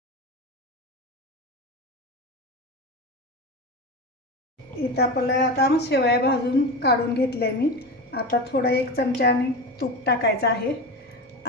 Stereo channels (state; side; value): normal; both; correlation 0.23